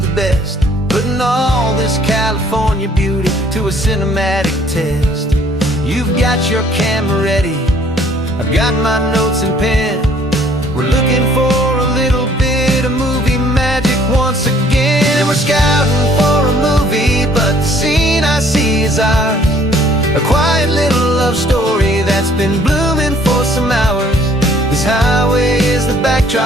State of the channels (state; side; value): normal; both; correlation 0.60